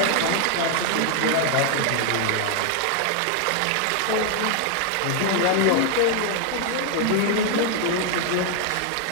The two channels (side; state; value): both; different; correlation 0.00